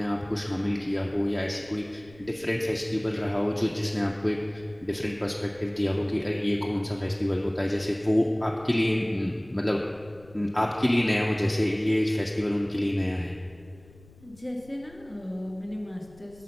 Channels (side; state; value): left; noise; rumble, 24 dB below the sound